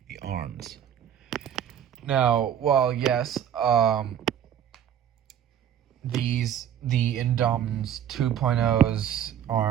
the arms. Now, well, yes, the Indominus 2.0's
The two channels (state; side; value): quieter; left; 9.7 dB